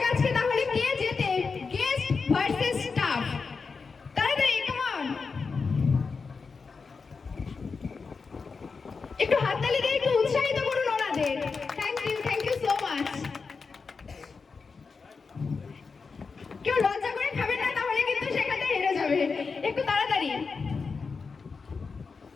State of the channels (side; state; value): right; quieter; 4.9 dB